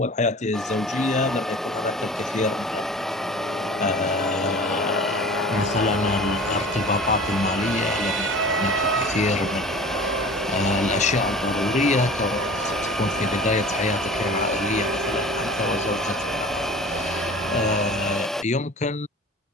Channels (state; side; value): normal; both; correlation 0.41